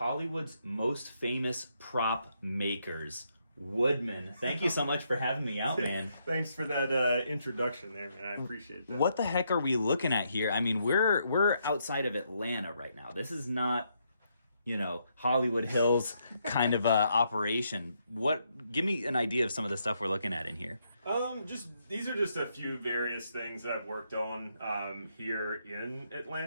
most famous prop makers, Woodman. Thank you so much for having me out, man. Thanks for that introduction there, man. I appreciate that. What the heck are we looking at here? I mean, we're outside of Atlanta right now. This is not, Hollywood Hills kind of operation. Give me an idea of some of the stuff we're looking at in here. These are just a few various things that I've worked on here in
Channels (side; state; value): both; inverted; correlation -0.77